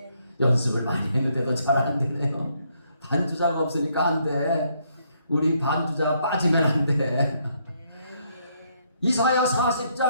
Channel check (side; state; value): both; inverted; correlation -0.73